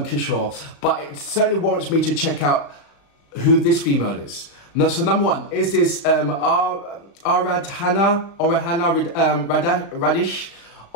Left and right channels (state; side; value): late; right; 36 ms